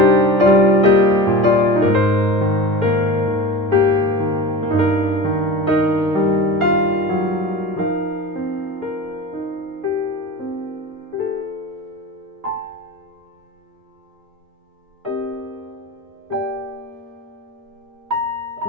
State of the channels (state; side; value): normal; both; correlation 0.32